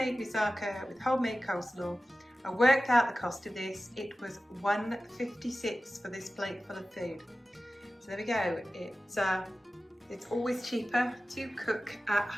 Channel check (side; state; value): both; normal; correlation 0.95